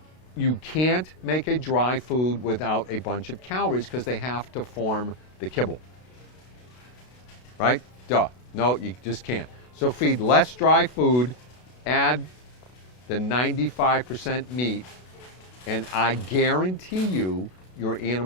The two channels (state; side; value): late; right; 32 ms